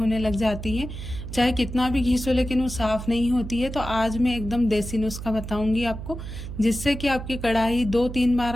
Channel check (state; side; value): noise; right; hum, 9 dB below the sound